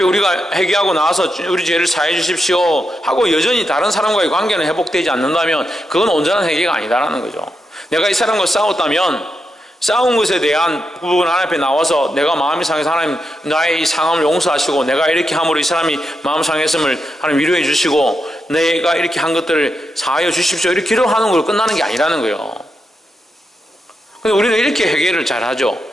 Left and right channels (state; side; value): normal; both; correlation 0.85